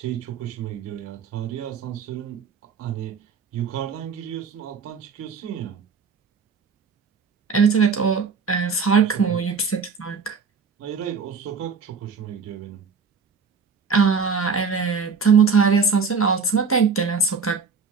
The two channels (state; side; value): quieter; left; 5.4 dB